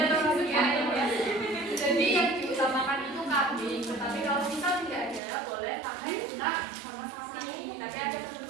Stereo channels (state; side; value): drops out; left; at 5.2 s